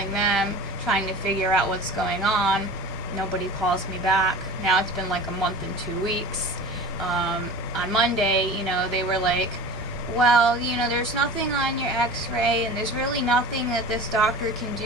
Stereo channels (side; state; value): both; normal; correlation 0.37